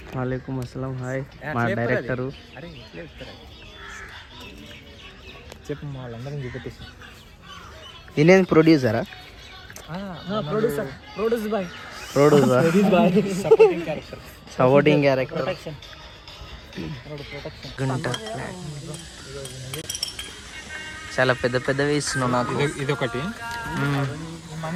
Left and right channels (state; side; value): identical; both; correlation 1.00